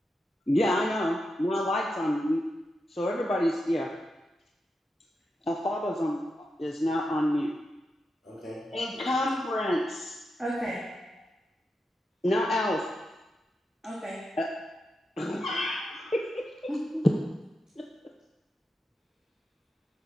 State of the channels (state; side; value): normal; both; correlation 0.87